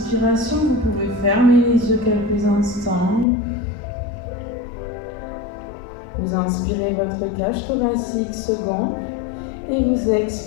Vous pouvez fermer les yeux quelques instants. Vous inspirez votre cage thoracique se gonfle et vous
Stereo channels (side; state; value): right; drops out; at 3.2 s